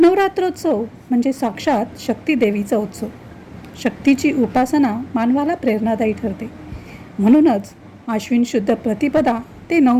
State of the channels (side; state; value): both; identical; correlation 1.00